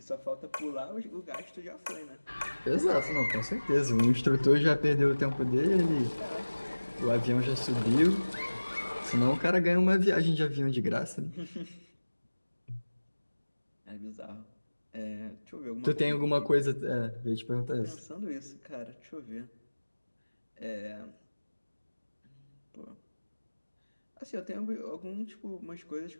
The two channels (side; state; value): both; inverted; correlation -1.00